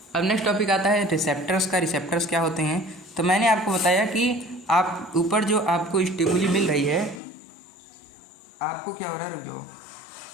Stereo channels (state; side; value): drops out; right; at 7.2 s